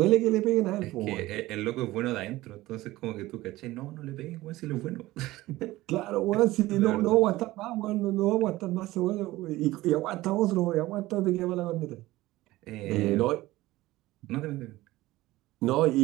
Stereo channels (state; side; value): quieter; left; 17.8 dB